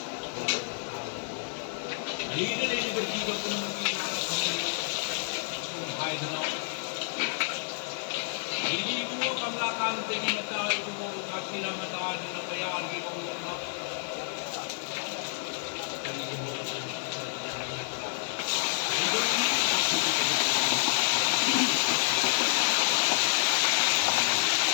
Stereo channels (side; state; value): right; silent; 58 dB below the other